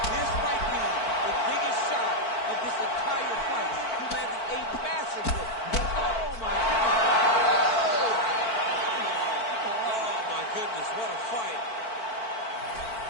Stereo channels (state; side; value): late; right; 4.5 ms